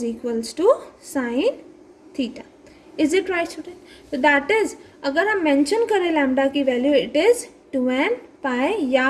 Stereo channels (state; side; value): identical; both; correlation 1.00